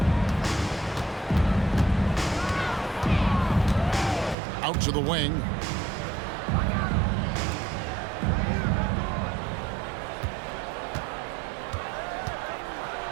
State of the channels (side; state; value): left; drops out; at 4.4 s